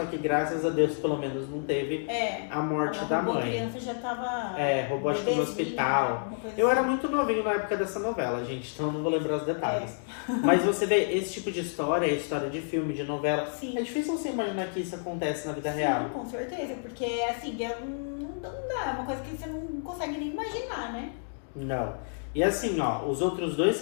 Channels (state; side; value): silent; right; digital silence